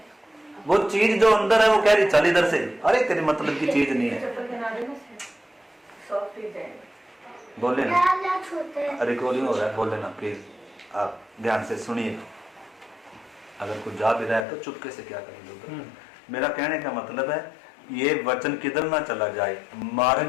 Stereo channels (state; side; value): drops out; right; at 14.5 s